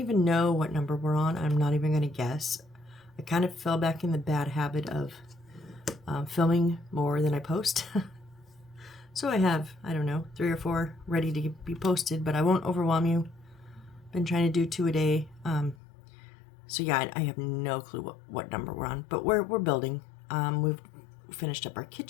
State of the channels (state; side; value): drops out; right; at 15.8 s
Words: know what number we're on. I'm not even going to guess. I kind of fell back in the bad habit of filming more than I post. So I have, I don't know, 3 or 4 ready to be posted, but I won't overwhelm you. Been trying to do 2 a day. So yeah, I have no clue what number we're on, but we're building. We've finished up our